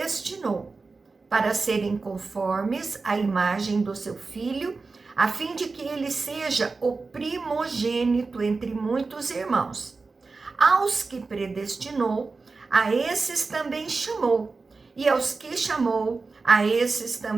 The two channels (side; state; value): left; quieter; 4.1 dB